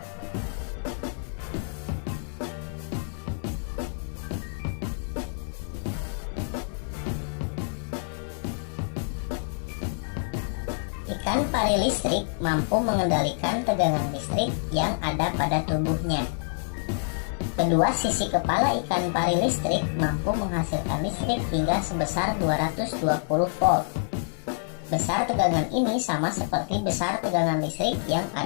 Ikan pari listrik mampu mengendalikan tegangan listrik yang ada pada tubuhnya. Kedua sisi kepala ikan pari listrik mampu menghasilkan listrik hingga sebesar 220 volt. Besar tegangan ini sama seperti besar tegangan listrik yang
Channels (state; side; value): silent; right; 59 dB below the other